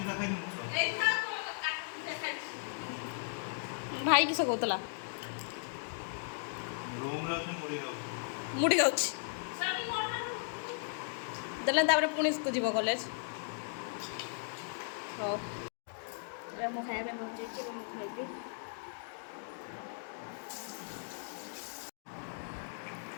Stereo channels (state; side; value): silent; right; digital silence